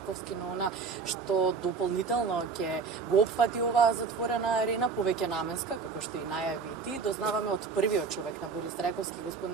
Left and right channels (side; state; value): left; quieter; 5.0 dB